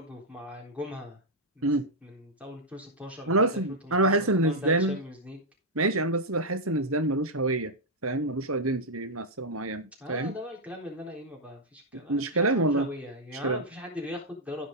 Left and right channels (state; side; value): normal; both; correlation -0.03